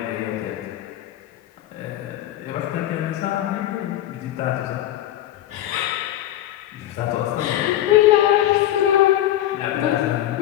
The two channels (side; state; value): right; quieter; 13.1 dB